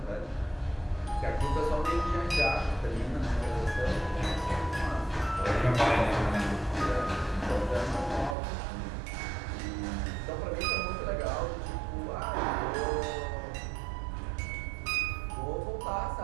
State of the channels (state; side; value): drops out; left; at 8.3 s